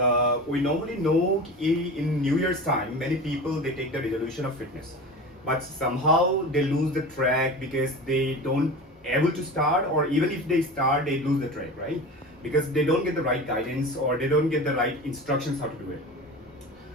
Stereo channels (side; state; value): both; normal; correlation 0.31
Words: we normally know in New Year's time many people they take the resolution of fitness, but somehow they lose the track because they don't able to start, or even if they start they lose the track, right? Because they don't get the right guidance or they don't get the right instructions how to do it.